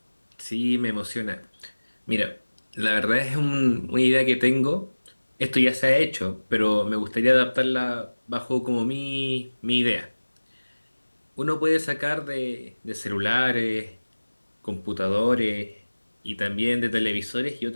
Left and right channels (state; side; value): inverted; both; correlation -1.00